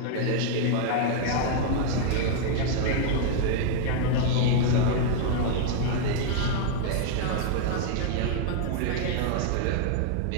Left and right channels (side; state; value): both; different; correlation 0.00